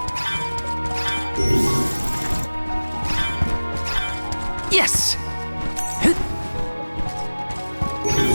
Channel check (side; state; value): both; inverted; correlation -1.00